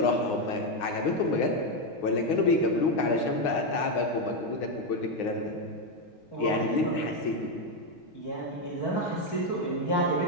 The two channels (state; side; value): late; right; 6.2 ms